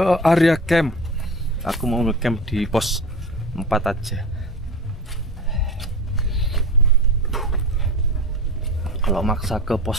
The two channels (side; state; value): both; normal; correlation 0.32